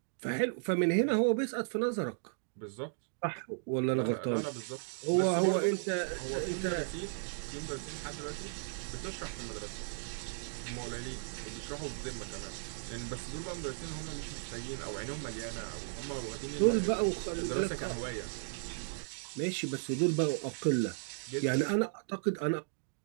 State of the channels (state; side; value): silent; left; digital silence